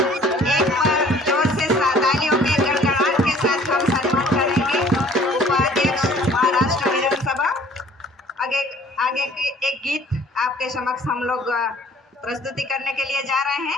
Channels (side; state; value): both; normal; correlation 0.53